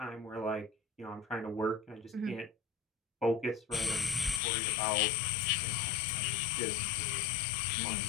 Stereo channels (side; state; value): right; drops out; at 4.4 s